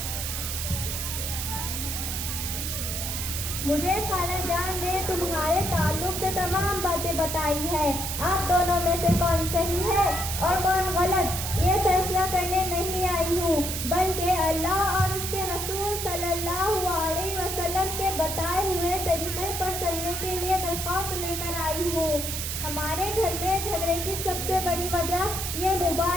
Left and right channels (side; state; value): right; noise; hiss, 3 dB below the sound